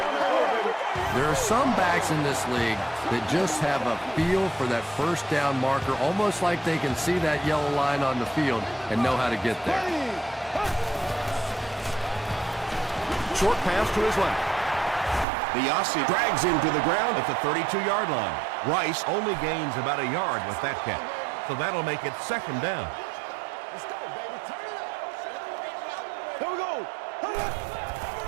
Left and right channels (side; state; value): left; drops out; at 15.2 s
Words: There are some backs in this league that just have a feel for that first down marker, almost like they can see that yellow line on the field and know how to get there. Short pass to his left. The Aussie drags him to the ground at the 32-yard line. Rice only gains about a yard with that catch, so that'll make it second down.